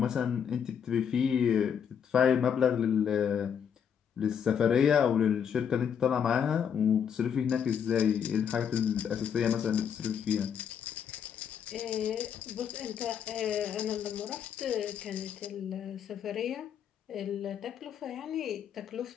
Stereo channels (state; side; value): quieter; right; 7.9 dB